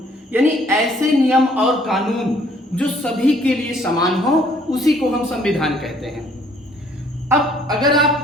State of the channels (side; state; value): both; normal; correlation 0.61